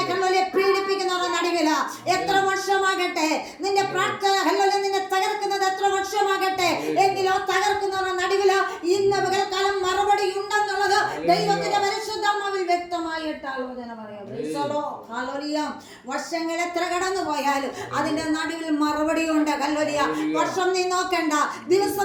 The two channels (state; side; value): identical; both; correlation 1.00